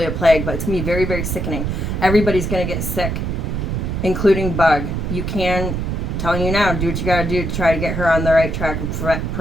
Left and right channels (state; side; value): noise; right; rumble, 2 dB below the sound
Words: a plague, but it's gonna be very, very sickening. Everybody's gonna get sick, including Bug. You can, telling you now, do what you gotta do to try to get her on the right track of